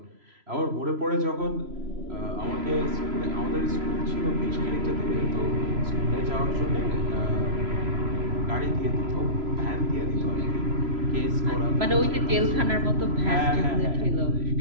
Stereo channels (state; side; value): late; left; 3.0 ms